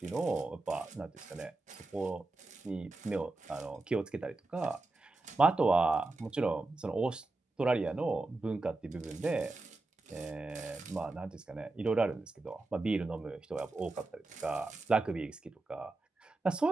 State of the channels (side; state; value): left; quieter; 3.2 dB